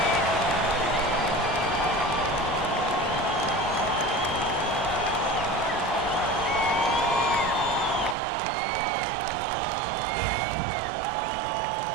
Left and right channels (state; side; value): drops out; left; at 8.2 s